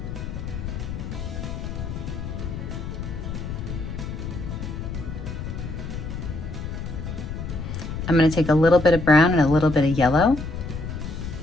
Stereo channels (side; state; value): left; noise; rumble, 6 dB below the sound